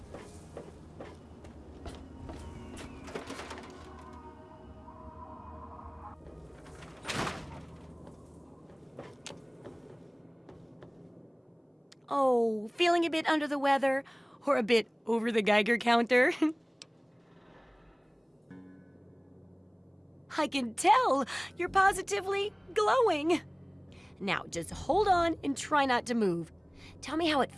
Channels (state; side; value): identical; both; correlation 1.00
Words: Oh, feeling a bit under the weather or a bit over the Geiger counter? I can tell you're positively glowing. Now, just hold on and try not to move. Tell me how it